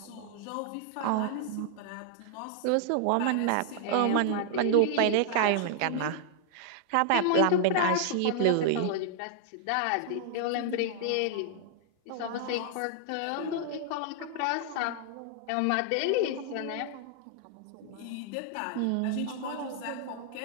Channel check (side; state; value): both; different; correlation -0.01